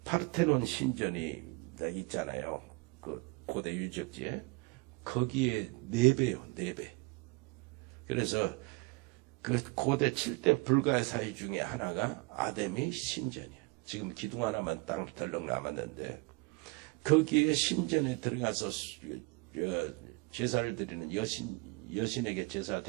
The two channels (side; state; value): left; quieter; 28.0 dB